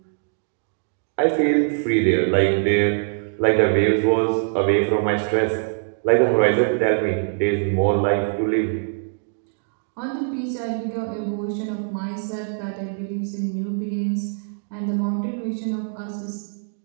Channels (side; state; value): left; silent; digital silence